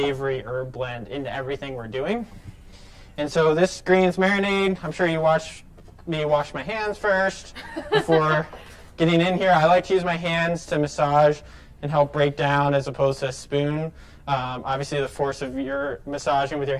herb blend into everything we're doing. And so this greens marinade, I'm sure you watched me wash my hands first before getting in here. I like to use my hands to massage and help break down as opposed to a spoon. Obviously, the force of your massaging with your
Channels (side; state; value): both; identical; correlation 1.00